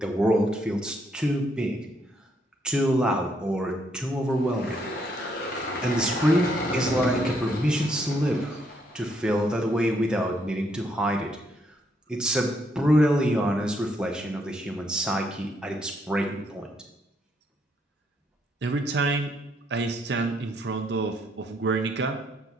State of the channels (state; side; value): normal; both; correlation 0.73